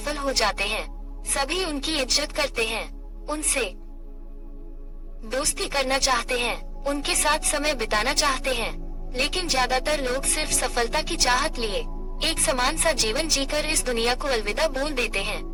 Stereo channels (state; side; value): identical; both; correlation 1.00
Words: हो जाते हैं। सभी उनकी इज्जत करते हैं, उनसे दोस्ती करना चाहते हैं, उनके साथ समय बिताना चाहते हैं, लेकिन ज्यादातर लोग सिर्फ सफलता की चाहत लिए एक समान सा जीवन जीकर इस दुनिया को अलविदा बोल देते हैं।